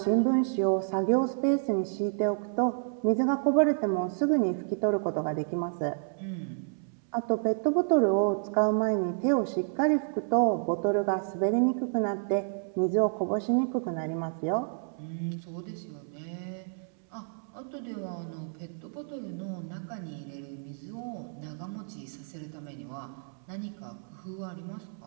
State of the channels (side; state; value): left; silent; 58 dB below the other